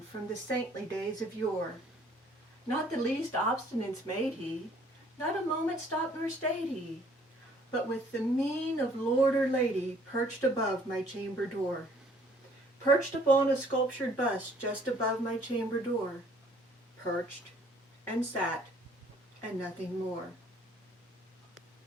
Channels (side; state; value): both; normal; correlation 0.59